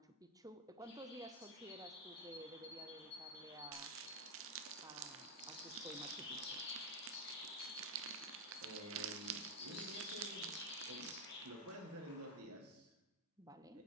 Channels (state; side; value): normal; both; correlation 0.05